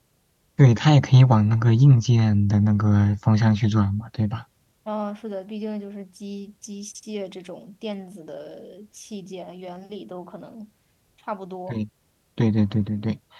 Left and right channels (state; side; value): identical; both; correlation 1.00